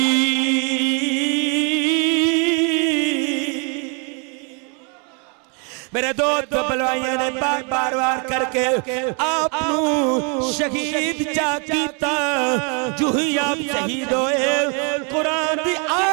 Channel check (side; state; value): left; quieter; 36.5 dB